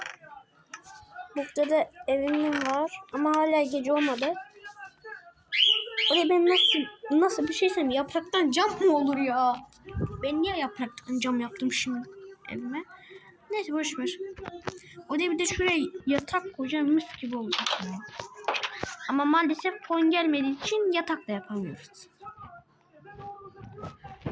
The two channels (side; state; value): both; identical; correlation 1.00